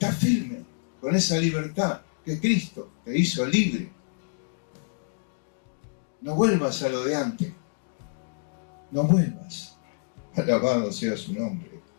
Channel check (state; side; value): silent; right; digital silence